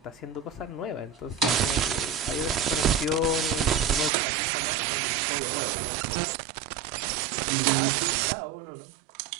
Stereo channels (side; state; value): left; drops out; at 4.1 s